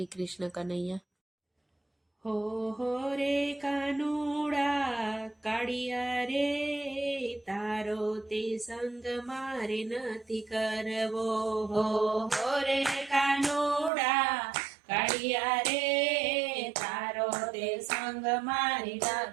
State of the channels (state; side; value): drops out; left; at 13.9 s